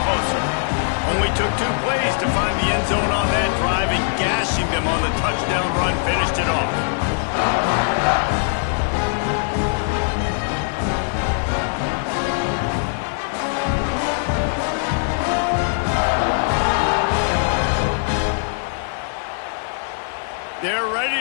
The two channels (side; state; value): right; silent; 63 dB below the other